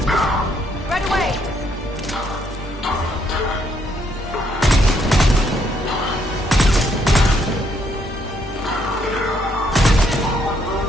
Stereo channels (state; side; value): normal; both; correlation 0.72